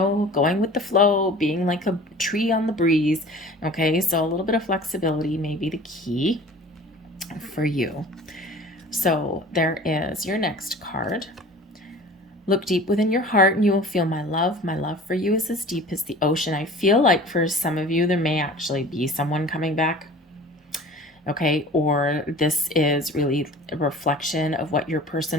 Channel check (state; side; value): normal; both; correlation 0.43